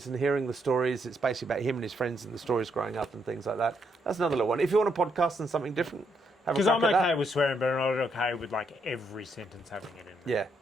and hearing the stories. It's basically about him and his friends and the stories growing up and things like that. That's another little one. If you want a podcast and something different, have a Because crack I'm at okay that. with swearing, but I'm not okay with like every sentence having it in there. Yeah.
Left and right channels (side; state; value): both; normal; correlation 0.76